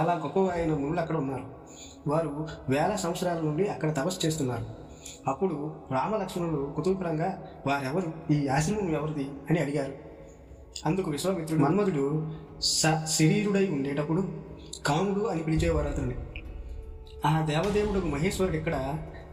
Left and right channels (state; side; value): identical; both; correlation 1.00